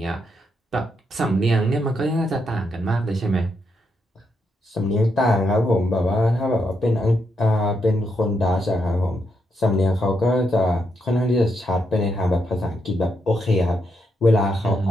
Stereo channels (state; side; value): normal; both; correlation 0.80